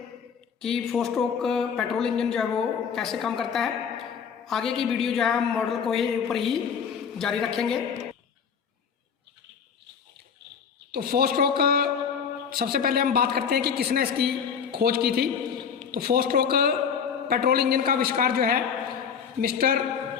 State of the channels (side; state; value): right; quieter; 6.9 dB